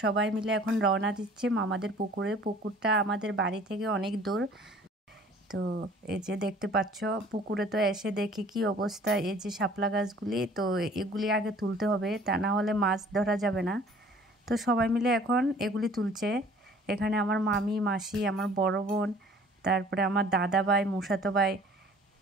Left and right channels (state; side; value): normal; both; correlation 0.51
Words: সবাই মিলে এখন রওনা দিচ্ছে মামাদের পুকুরে। পুকুরটা আমাদের বাড়ি থেকে অনেক দূর। তো এই যে দেখতে পাচ্ছ পুকুরে, তো এসে দেখি কি অবস্থা। এই যে শাপলা গাছগুলি, তো এগুলি আগে তুলতে হবে, তা না হলে মাছ ধরা যাবে না। তো সবাই মিলে এখন এগুলি তুলছে। এখানে আমার মামি, মাসি, আমার বড় বোন, তারপরে আমার দাদা ভাই, মুসাতো ভাই,